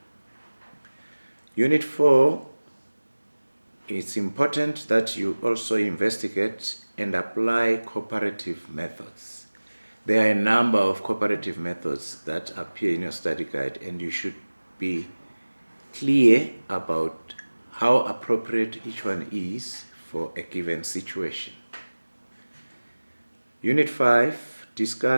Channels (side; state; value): both; inverted; correlation -1.00